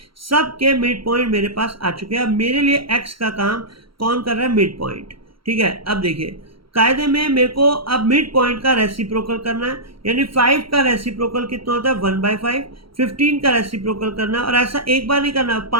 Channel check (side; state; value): left; late; 0.74 ms